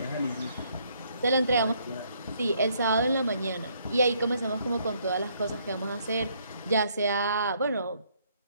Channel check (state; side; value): inverted; both; correlation -0.68